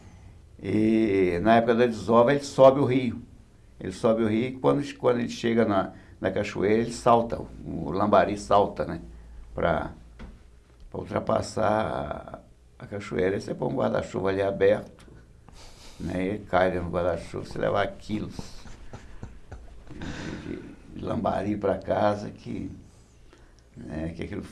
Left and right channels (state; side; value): identical; both; correlation 1.00